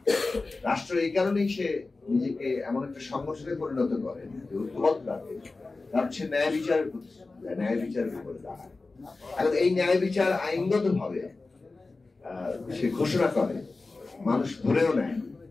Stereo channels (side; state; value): right; quieter; 3.6 dB